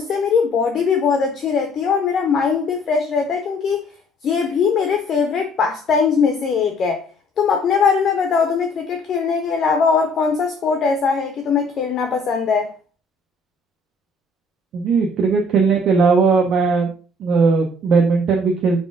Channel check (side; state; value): both; normal; correlation 0.58